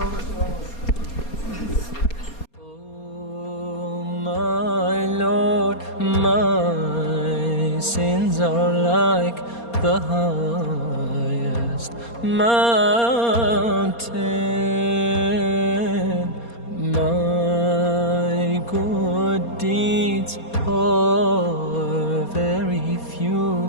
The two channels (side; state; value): right; late; 4.3 ms